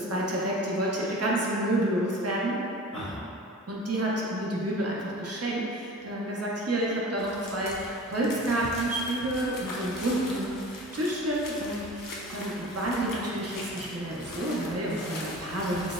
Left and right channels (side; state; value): both; normal; correlation 0.39